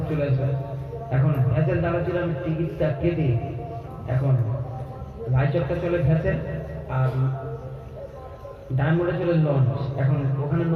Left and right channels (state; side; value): identical; both; correlation 1.00